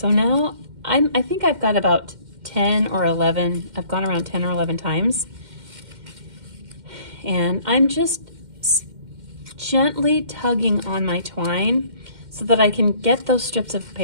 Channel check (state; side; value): late; left; 2.1 ms